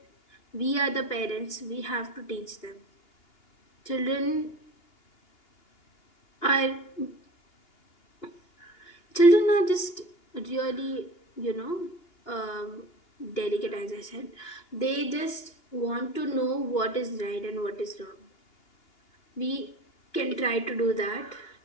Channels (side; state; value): right; late; 2.8 ms